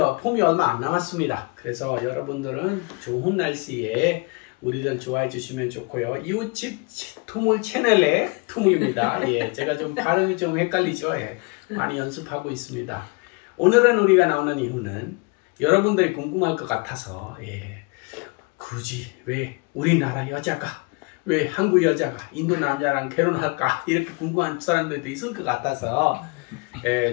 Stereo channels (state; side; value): quieter; right; 29.5 dB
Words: 봄이 얼마 안 남았습니다. 그래서 여러분들은 좋은 날씨에 우리들 좋아해 주시면 좋고요. 이웃집 투물 채널의 투물입니다. 예, 제가 좀 발음이 좀 헷갈리죠. 예, 많이 연습하고 있습니다. 오늘은 우리가 나오는 이유는 여러분들이 궁금할 것 같아서, 예, 굳이 왜 우리나라 여자가, 왜 한국 여자가 인도 남자랑 결혼할까, 이렇게 궁금한 사람들도 있을 것 같아서,